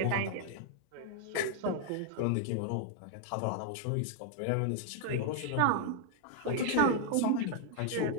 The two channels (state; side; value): different; both; correlation 0.00